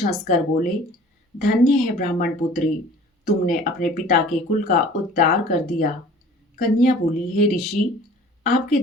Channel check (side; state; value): both; normal; correlation 0.47